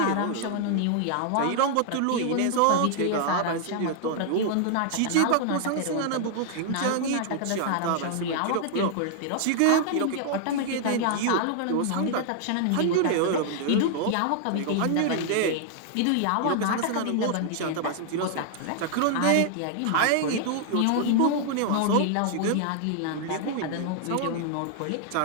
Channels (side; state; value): both; different; correlation 0.00